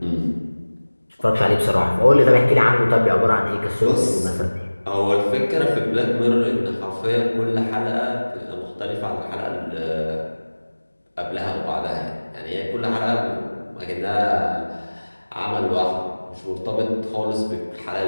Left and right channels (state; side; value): inverted; both; correlation -1.00